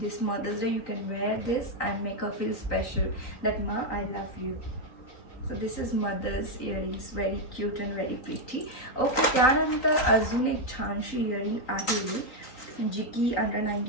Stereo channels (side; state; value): right; late; 3.9 ms